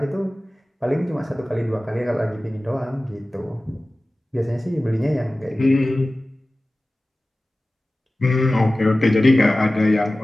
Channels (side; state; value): both; normal; correlation 0.97